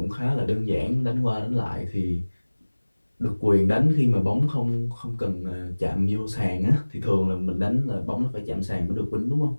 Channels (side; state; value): both; inverted; correlation -1.00